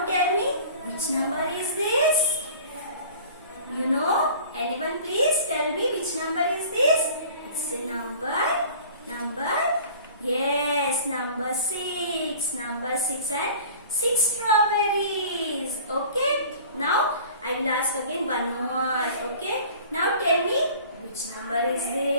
tell me, which number is this? You know? Anyone please tell me which number is this? It's a number. Yes, number 6. Number 6 and 6 strawberries. Okay? Now I will ask again one more. Okay? Now tell me which number is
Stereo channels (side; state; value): both; inverted; correlation -0.45